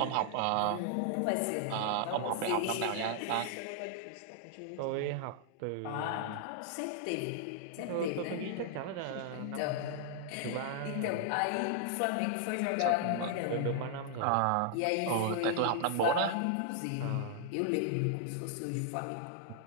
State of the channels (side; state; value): both; different; correlation -0.01